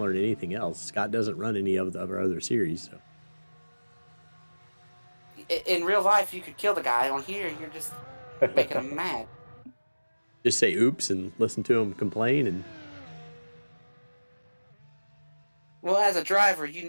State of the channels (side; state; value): both; inverted; correlation -1.00